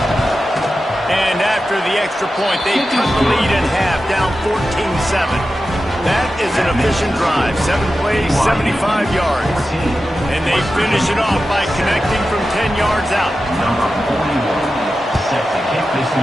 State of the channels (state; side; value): normal; both; correlation 0.92